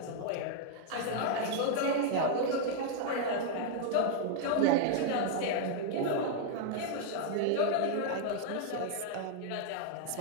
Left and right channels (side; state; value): both; different; correlation 0.00